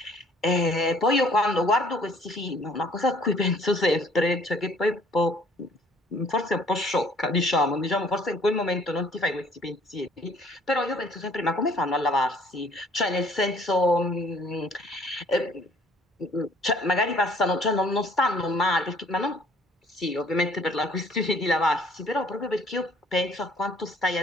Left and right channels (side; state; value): both; normal; correlation 0.58